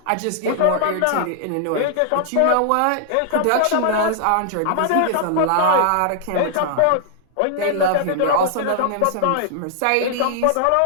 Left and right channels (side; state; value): both; different; correlation -0.01